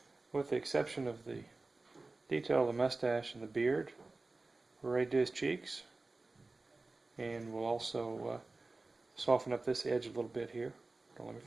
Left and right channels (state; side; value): quieter; left; 3.3 dB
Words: with the exception of the detail of the mustache and the beard, we're ready to do his cheeks. And we'll also soften up this edge a little bit here. Don't let me